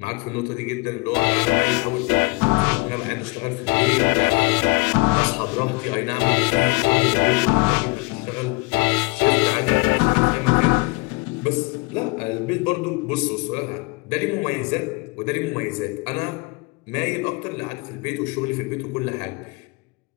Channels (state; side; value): quieter; right; 27.8 dB